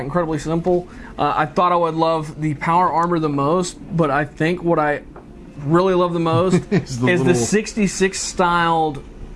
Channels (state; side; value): identical; both; correlation 1.00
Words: simple. I thought I would love the power armor the most, but I think what I really love the most is the 66 styled